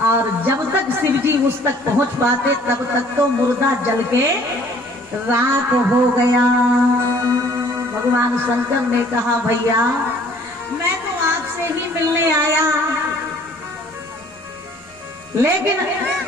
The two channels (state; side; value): normal; both; correlation 0.56